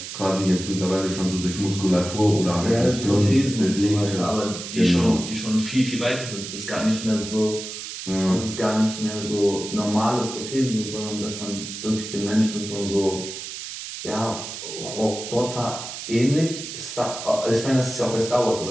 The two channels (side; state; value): right; noise; hiss, 9 dB below the sound